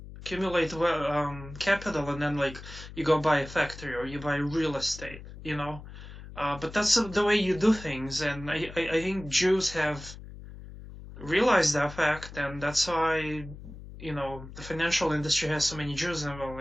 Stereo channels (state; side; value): noise; left; hum, 14 dB below the sound